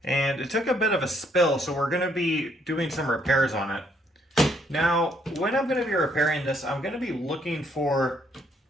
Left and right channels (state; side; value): normal; both; correlation 0.69